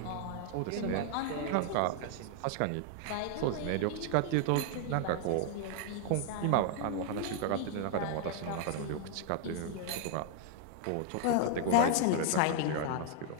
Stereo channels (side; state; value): both; different; correlation 0.00